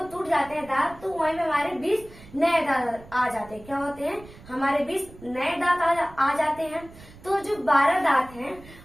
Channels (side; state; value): right; noise; rumble, 20 dB below the sound